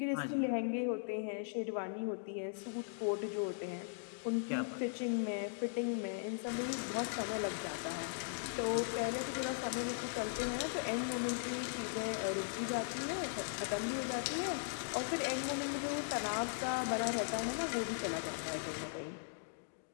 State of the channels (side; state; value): right; silent; digital silence